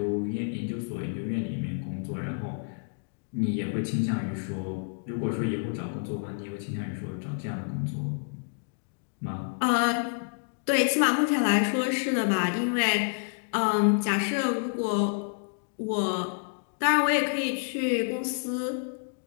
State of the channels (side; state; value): right; silent; digital silence